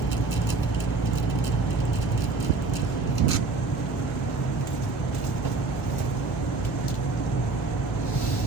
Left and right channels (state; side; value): quieter; left; 3.8 dB